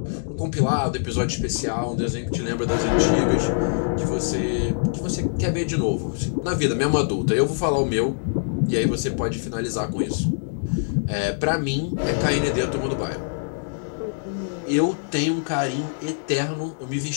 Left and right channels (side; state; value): right; silent; digital silence